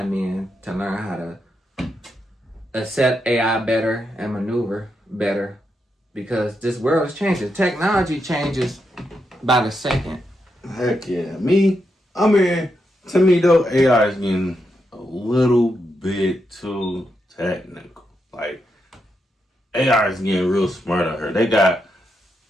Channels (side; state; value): both; normal; correlation 0.83